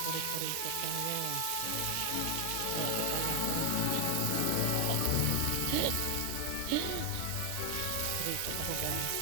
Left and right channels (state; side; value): different; both; correlation 0.00